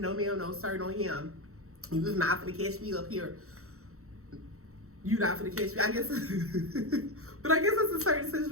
sir, no him. You was not gonna catch me up here. You not gonna catch me, I guess. But I guess it's a certain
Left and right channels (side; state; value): left; late; 0.64 ms